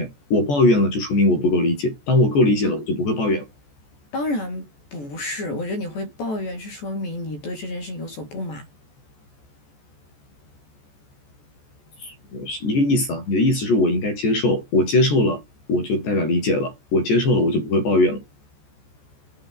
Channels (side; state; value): right; late; 14 ms